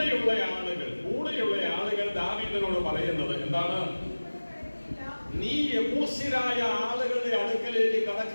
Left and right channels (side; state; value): both; inverted; correlation -1.00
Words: ആളുകൾ ദാവീദിനോട് പറയുന്നത് എന്താണ്? നീ യെബൂസ്യരായ ആളുകളുടെ അടുക്കലേക്ക്